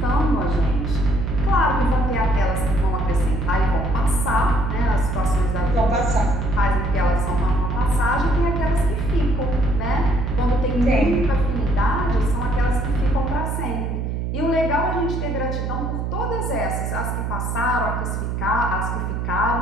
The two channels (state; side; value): noise; right; hum, 2 dB below the sound